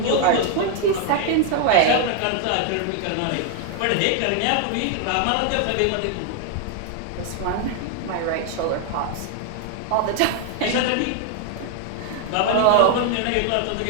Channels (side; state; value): both; different; correlation 0.00